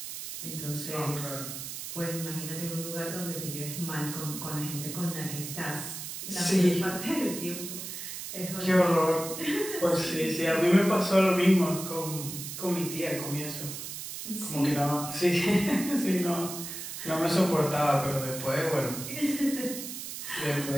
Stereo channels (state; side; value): noise; right; hiss, 8 dB below the sound